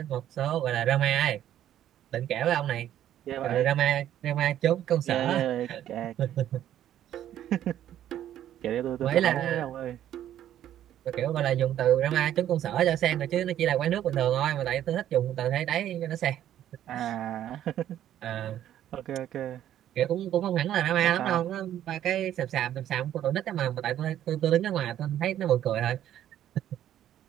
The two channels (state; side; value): quieter; left; 11.5 dB